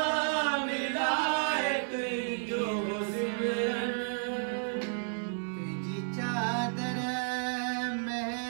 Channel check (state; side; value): silent; left; 56 dB below the other